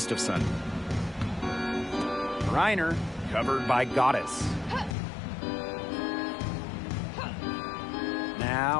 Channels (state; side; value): drops out; right; at 5.0 s